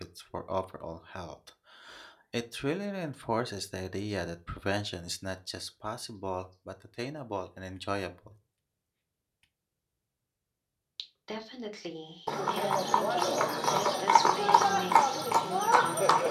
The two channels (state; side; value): identical; both; correlation 1.00